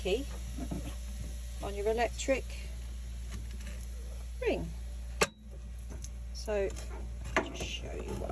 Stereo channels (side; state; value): both; identical; correlation 1.00